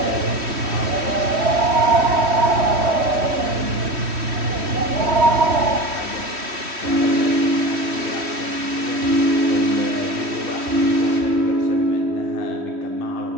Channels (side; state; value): left; late; 3.1 ms